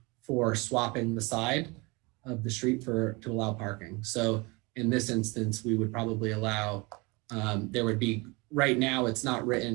for swapping the side of the street to allow parking. So in this instance, we would probably allow, there would be, right now it's not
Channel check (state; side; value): quieter; left; 26.6 dB